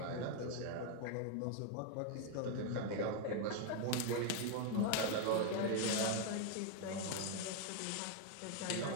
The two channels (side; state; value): both; different; correlation 0.01